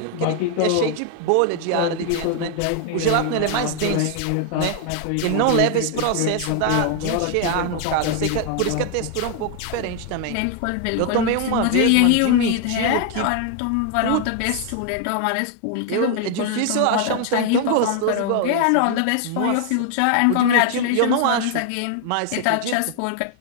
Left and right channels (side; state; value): both; different; correlation 0.00